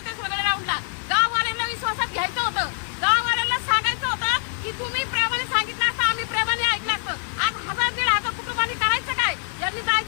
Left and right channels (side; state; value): right; silent; 62 dB below the other